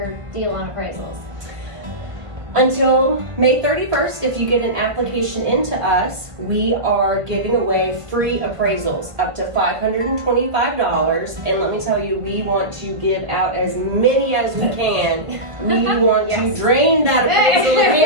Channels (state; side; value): late; left; 1.5 ms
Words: deal on appraisals? Until May 31st, if you get an application into us, we are giving away free appraisals up to $525. And let me tell you, we want to give out as many as we can. We want to drain that appraisal